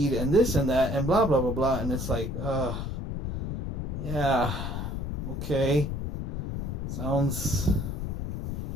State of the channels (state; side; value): noise; left; rumble, 3 dB below the sound